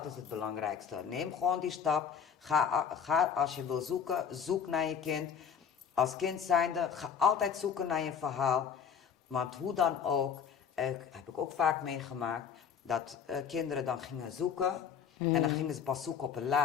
is het belangrijkste. Neem gewoon die stap. Ga als je wil zoeken, zoek naar je kind. Als kind zijnde, ga altijd zoeken naar je verhaal. Want hoe dan ook, heb ik ook vaak meegemaakt, dat kinderen dan gingen zoeken. En dan gingen ze pas zoeken op een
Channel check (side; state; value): right; quieter; 7.3 dB